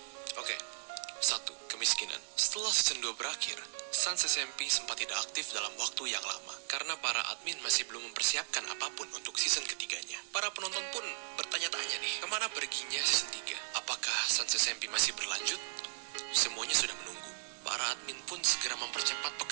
Oke. 1. Kemiskinan. Setelah season 2 berakhir, Sans SMP sempat tidak aktif dalam waktu yang lama karena para admin masih belum mempersiapkan apapun untuk season ketiganya. Para penonton pun bertanya-tanya nih, kemana perginya season 3? Apakah Sans SMP masih berlanjut? Semuanya sudah menunggu. Para admin pun segera mempercepat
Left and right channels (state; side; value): silent; left; digital silence